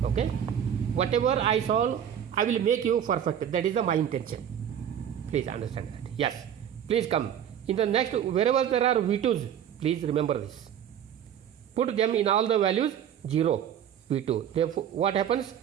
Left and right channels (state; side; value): quieter; left; 9.4 dB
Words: Okay? Whatever I solve, I will make you perfect. That is my intention. Please understand that. Yes. Please come. In the next, wherever there are V2s, please remember this. Put them in all the values 0, V2. Therefore, what happens?